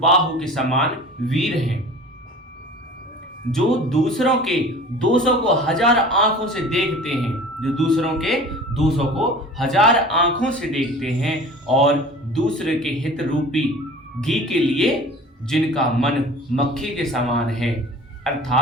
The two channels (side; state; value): both; normal; correlation 0.41